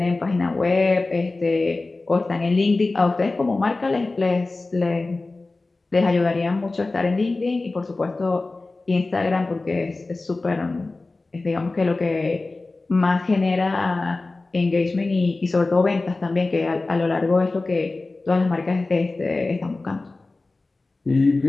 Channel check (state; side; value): quieter; right; 3.3 dB